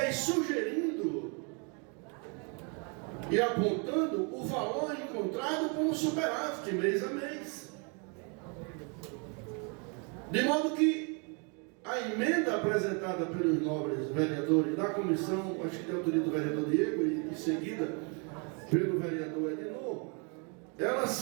sugerindo e apontando o valor encontrado como superávit mês a mês. De modo que a emenda apresentada pelos nobres vereadores da comissão, acho que tem autoria do vereador Diego e em seguida pelo vereador Edinor, ela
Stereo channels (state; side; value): quieter; left; 35.4 dB